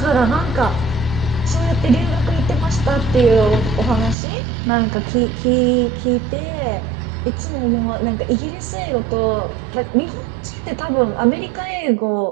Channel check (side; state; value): left; drops out; at 4.2 s